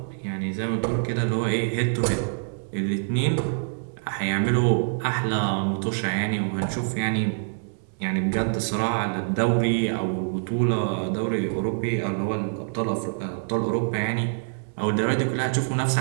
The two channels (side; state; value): left; silent; digital silence